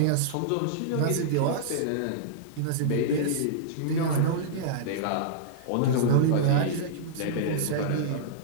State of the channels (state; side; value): different; both; correlation -0.02